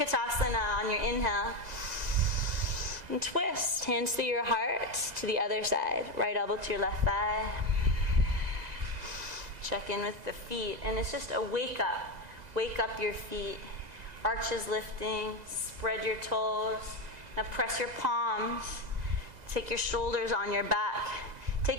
on your inhale. And twist. Hands through your heart to the other side. Right elbow to your left thigh. Check in with the feet. And it's just a wake up. Wake up your feet. Arches lifting. Spread your toes. Now press your palms. Take your shoulders on your back.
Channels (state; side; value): late; left; 2.0 ms